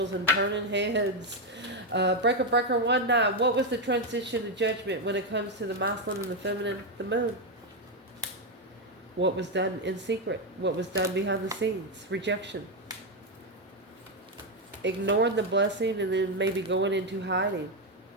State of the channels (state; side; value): normal; both; correlation 0.05